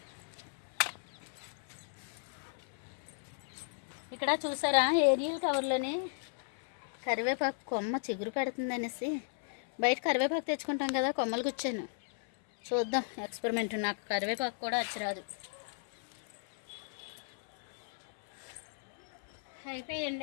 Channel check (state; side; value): silent; right; 54 dB below the other